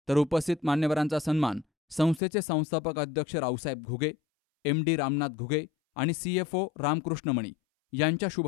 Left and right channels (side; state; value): right; drops out; at 2.2 s